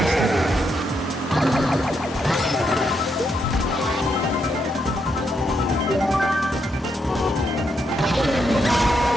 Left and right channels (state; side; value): normal; both; correlation 0.79